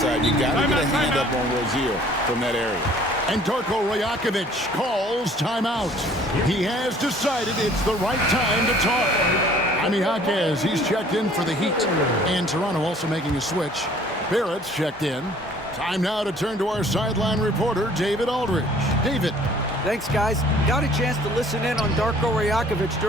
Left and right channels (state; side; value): normal; both; correlation 0.55